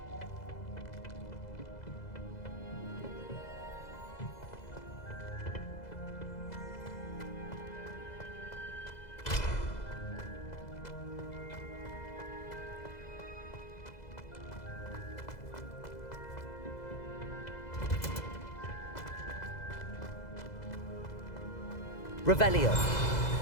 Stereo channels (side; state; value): right; late; 2.0 ms